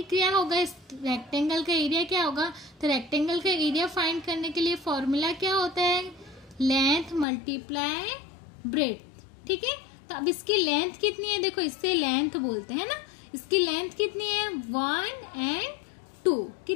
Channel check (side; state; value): right; drops out; at 7.2 s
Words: क्या होगा, इस रेक्टेंगल का एरिया क्या होगा। तो रेक्टेंगल का एरिया फाइंड करने के लिए फॉर्मूला क्या होता है, लेंथ मल्टीप्लाई ब्रेड्थ, ठीक है। तो अब इसकी लेंथ कितनी है, देखो इससे लेंथ बोलते हैं ना, इसकी लेंथ कितनी है 1 एंड 2,